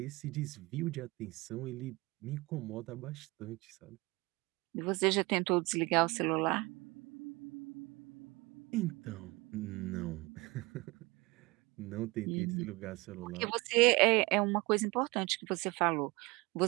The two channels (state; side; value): quieter; left; 24.0 dB